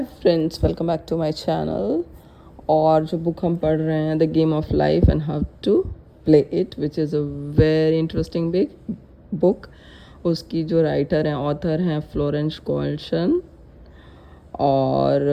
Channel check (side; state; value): both; identical; correlation 1.00